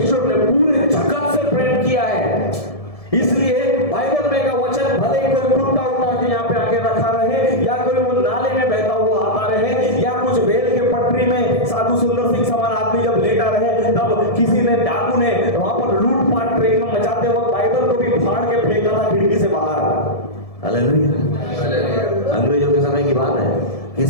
ने पूरे जगत से प्रेम किया है, इसलिए बाइबल में का वचन भले ही कोई कुत्ता उठा के यहाँ पे आके रखा रहे, या कोई वो नाले में बहता हुआ आता रहे, या कुछ रेल के पटरी में साधु सुंदर सिंह समान आदमी जब लेटा रहे, तब किसी ने डाकू ने वहां पर लूटपाट ट्रेन में मचाते वक्त बाइबल को भी फाड़ के फेंका था खिड़की से बाहर। हालेलुया। अंग्रेजों के समय की बात है,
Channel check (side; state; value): right; late; 1.7 ms